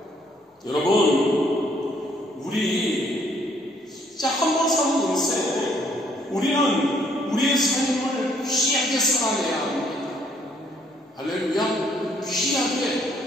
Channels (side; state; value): both; normal; correlation 0.66